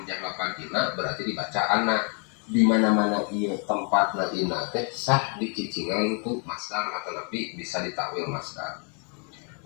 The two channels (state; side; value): quieter; right; 38.6 dB